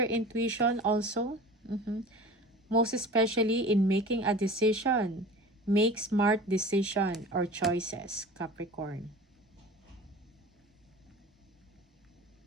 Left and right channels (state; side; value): normal; both; correlation 0.38